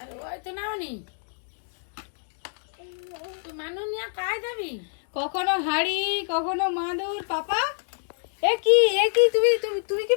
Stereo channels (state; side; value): silent; right; digital silence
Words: কখনো হাড়ি কখনো মাদুর। পাপা এ কি তুমি তুমি তুমি কি